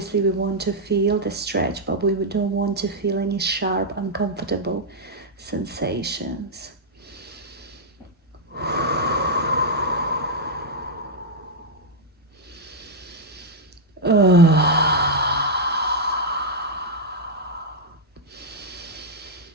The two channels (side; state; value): both; normal; correlation -0.03